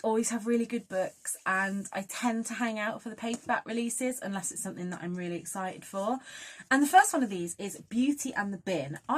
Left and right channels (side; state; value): both; identical; correlation 1.00